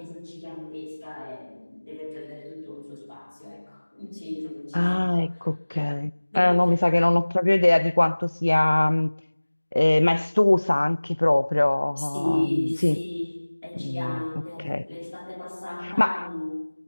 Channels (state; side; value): inverted; both; correlation -1.00